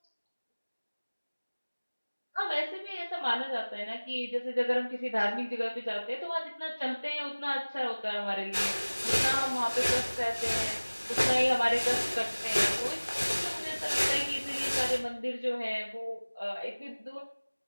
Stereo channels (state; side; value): inverted; both; correlation -1.00